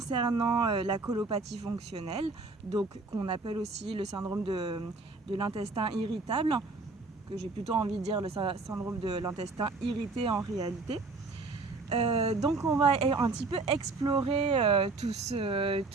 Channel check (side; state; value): left; quieter; 3.7 dB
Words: la colopathie fonctionnelle, donc qu'on appelle aussi le syndrome de l'intestin irritable, que j'ai plutôt envie de dire le syndrome de l'intestin irrité en réalité. Donc on va un petit peu explorer tout